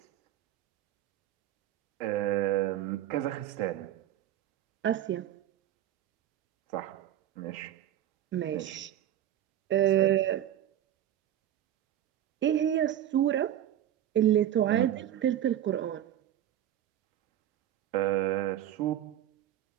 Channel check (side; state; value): left; quieter; 11.8 dB